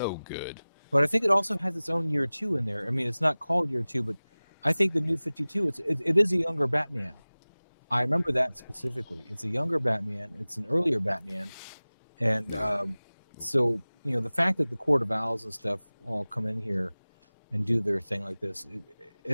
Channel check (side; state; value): both; inverted; correlation -0.99